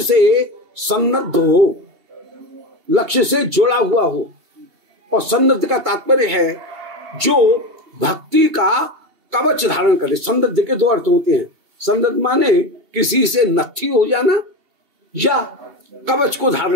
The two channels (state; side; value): late; left; 2.7 ms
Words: से सन्नद्ध हो, लक्ष्य से जुड़ा हुआ हो। और सन्नद्ध का तात्पर्य है जो भक्ति का कवच धारण करे। सन्नद्ध के 2 अर्थ होते हैं। सन्नद्ध माने किसी से नत्थी हो जाना या कवच को